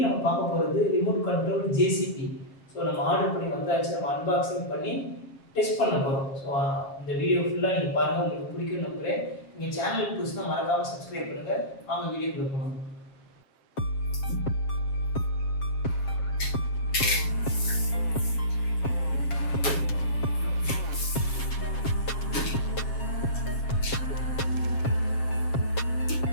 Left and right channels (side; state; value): right; late; 7.4 ms